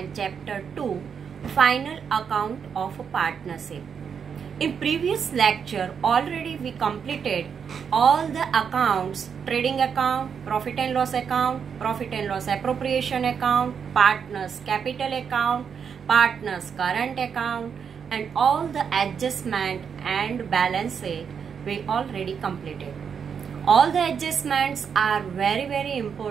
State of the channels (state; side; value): quieter; left; 6.9 dB